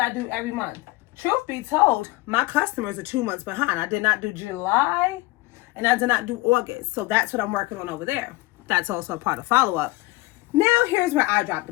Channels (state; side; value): quieter; right; 20.9 dB